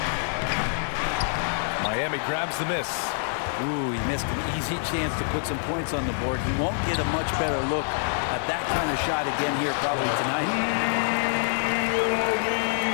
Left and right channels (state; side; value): silent; right; 61 dB below the other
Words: Miami grabs the miss. Ooh, he missed an easy chance to put some points on the board. He won't get a much better look at that kind of shot again here probably tonight.